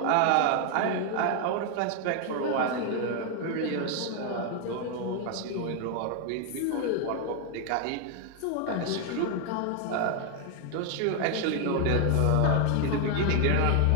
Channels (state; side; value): different; both; correlation 0.01